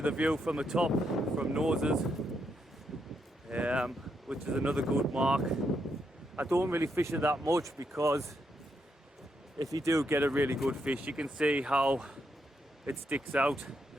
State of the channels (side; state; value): both; normal; correlation 0.80